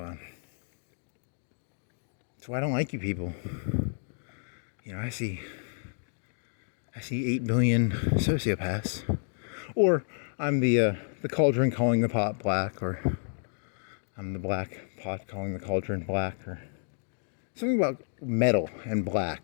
that's why I don't like you people. You know, I see 8 billion sociopaths. Or I'm the cauldron calling the pot black, or I'm the black pot calling the cauldron black, or something about metal and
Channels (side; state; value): right; silent; digital silence